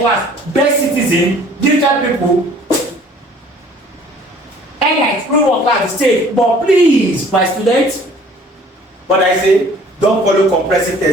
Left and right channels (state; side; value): normal; both; correlation 0.53